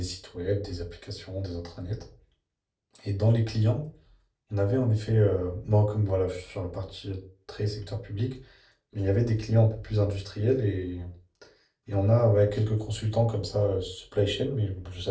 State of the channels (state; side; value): identical; both; correlation 1.00